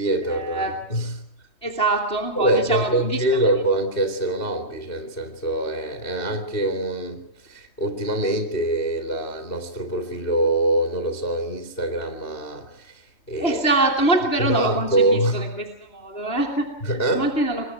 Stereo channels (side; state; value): right; late; 3.2 ms